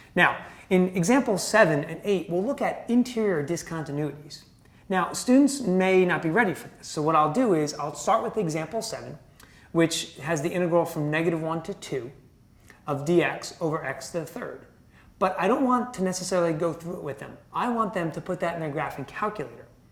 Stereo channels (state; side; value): identical; both; correlation 1.00